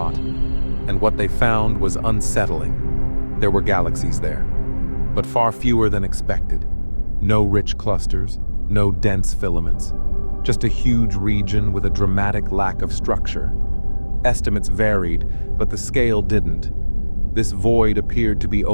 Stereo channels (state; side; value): inverted; both; correlation -1.00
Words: and what they found was unsettling. There were galaxies there, but far fewer than expected. No rich clusters, no dense filaments, just a huge region with a dramatic lack of structure. Estimates varied, but the scale didn't. This void appeared to be